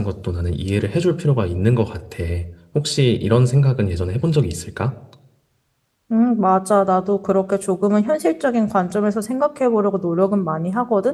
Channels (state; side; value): identical; both; correlation 1.00